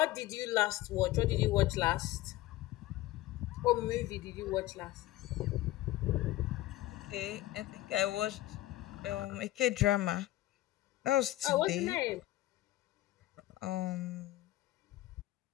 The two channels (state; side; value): quieter; right; 16.3 dB